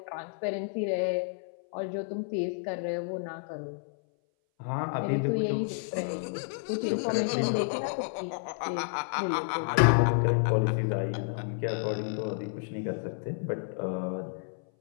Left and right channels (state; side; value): silent; right; 58 dB below the other